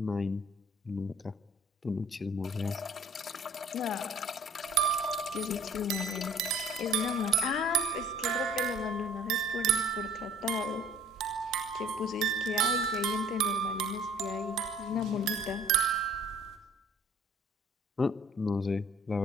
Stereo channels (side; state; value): both; normal; correlation 0.53